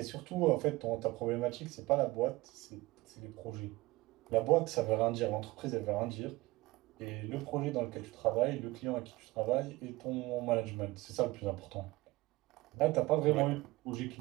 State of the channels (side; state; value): left; quieter; 20.3 dB